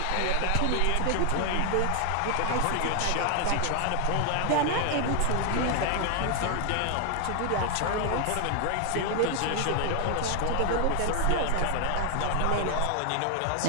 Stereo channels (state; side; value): different; both; correlation 0.00